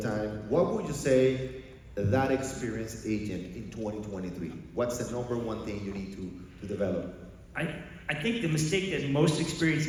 What would you say that experienced agent in 2023? What's the number 1 thing you need to develop? I think the mistake that most experienced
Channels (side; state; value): both; identical; correlation 1.00